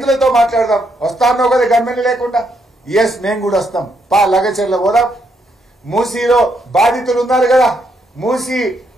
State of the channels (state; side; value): normal; both; correlation 0.76